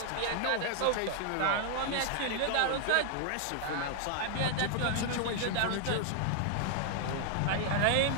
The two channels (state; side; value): different; both; correlation 0.00